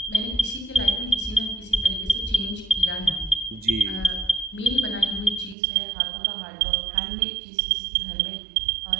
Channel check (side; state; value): left; drops out; at 5.6 s